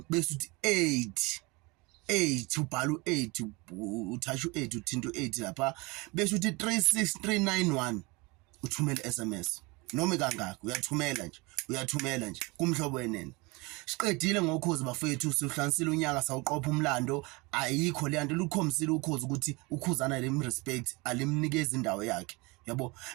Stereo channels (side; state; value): left; quieter; 25.8 dB